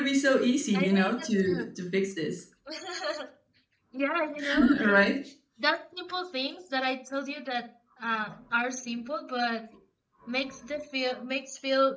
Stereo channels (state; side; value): identical; both; correlation 1.00